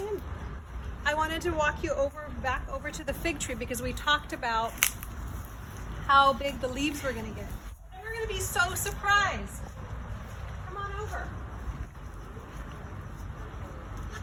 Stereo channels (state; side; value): identical; both; correlation 1.00